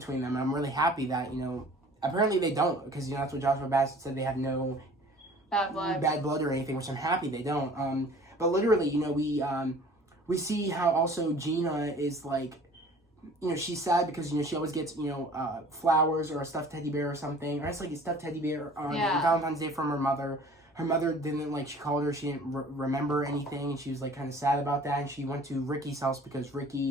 them. And I'm really happy that apparently they don't because that's what Joshua Bassett said. They have no bad blood or anything, which I'm happy they don't. But literally, we see how also Gina is like. She's sad because, she always gets, flowers or a stuffed teddy bear or something. Or it's like a stuffed teddy bear on Valentine's Day from her mother. Her mother didn't, she called her, she didn't remember anything. And she was, kind of sad about that. And she went to Ricky's house because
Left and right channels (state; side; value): normal; both; correlation 0.48